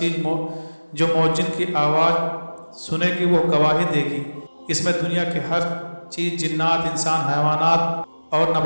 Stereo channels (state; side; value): inverted; both; correlation -1.00